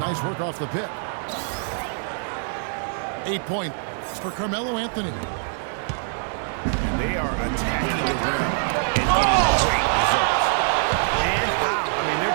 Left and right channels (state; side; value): silent; left; 62 dB below the other